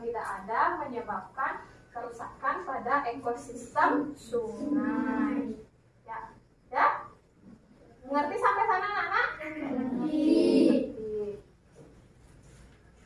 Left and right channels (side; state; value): both; identical; correlation 1.00